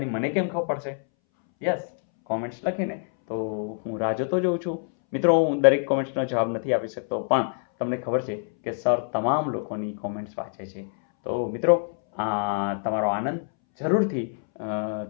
મને કેમ ખબર પડશે? યસ, કોમેન્ટ્સ લખીને તો હું રાહ જોતો જોઉં છું. મિત્રો, હું દરેક કોમેન્ટ્સનો જવાબ નથી આપી શકતો, પણ તમને ખબર છે કે સર તમામ લોકોની કોમેન્ટ્સ વાંચે છે. તો મિત્રો, તમારો આનંદ જરૂરથી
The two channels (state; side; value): silent; right; 61 dB below the other